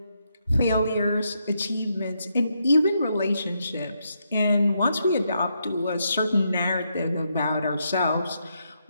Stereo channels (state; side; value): inverted; both; correlation -0.80